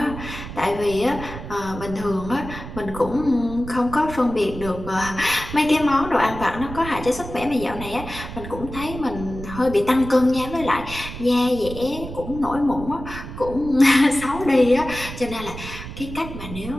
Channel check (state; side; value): noise; right; rumble, 11 dB below the sound